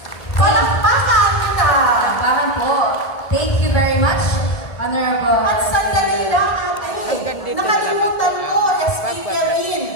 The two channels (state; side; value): late; right; 1.7 ms